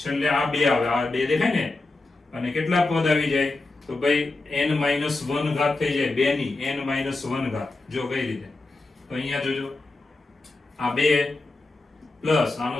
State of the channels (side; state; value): right; quieter; 3.2 dB